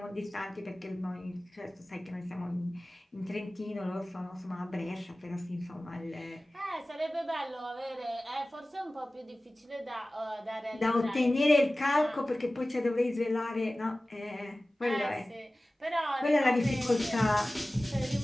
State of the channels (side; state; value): both; normal; correlation 0.97